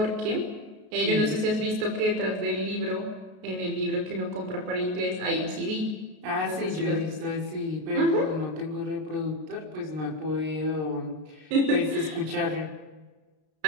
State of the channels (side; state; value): left; late; 33 ms